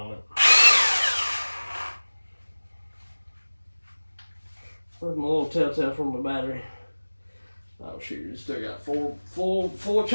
it. Where's my little telltale from the battery? Oh shoot, it's still got full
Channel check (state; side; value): inverted; both; correlation -1.00